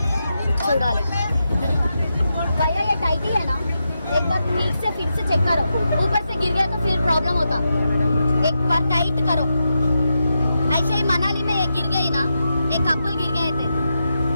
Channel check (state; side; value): inverted; both; correlation -0.87